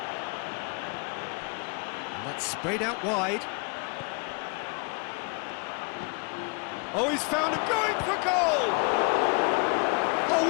And that's sprayed out wide. Oh, he's found him going for goal! Oh,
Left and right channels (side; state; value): right; quieter; 33.7 dB